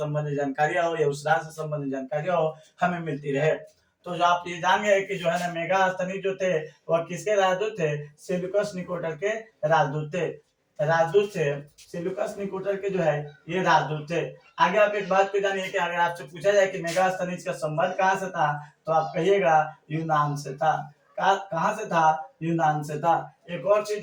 जानकारियां हो या उस राज्य से संबंधित जानकारियां हो हमें मिलती रहे। तो जो आप ये जान गए कि जो है ना मेगास्थनीज जो थे वह किसके राजदूत थे? सेल्यूकस निकोटर के राजदूत थे। राजदूत थे सेल्यूकस निकोटर के जो है ये राजदूत थे। आगे आप एक बात को जानिए कि अगर आपसे पूछा जाए कि मेगास्थनीज का संबंध कहाँ से था तो आप कहिएगा यूनान से था। कहां से था? यूनान से था। एक और चीज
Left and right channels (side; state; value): both; identical; correlation 1.00